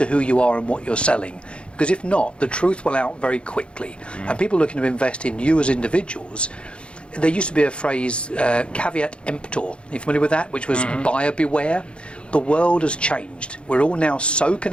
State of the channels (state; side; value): late; right; 0.057 ms